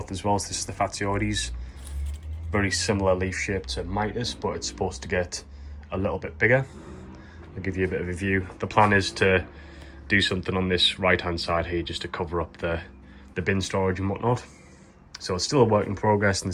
as well. So this is the Fatioides. Very similar leaf shape to Mitis, but it's supposed to get a little bit bigger. I'll give you a bit of a view. The plan is to do something on this right hand side here just to cover up the bin storage and whatnot. So it's still a work in progress and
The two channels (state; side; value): identical; both; correlation 1.00